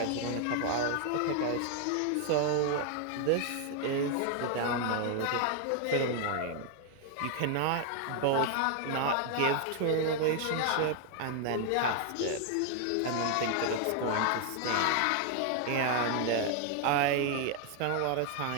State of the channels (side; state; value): both; different; correlation 0.00